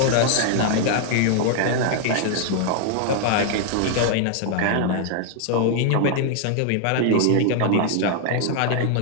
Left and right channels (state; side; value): different; both; correlation 0.00